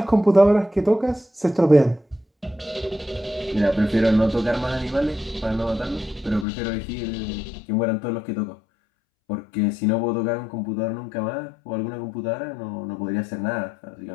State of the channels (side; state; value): right; drops out; at 6.5 s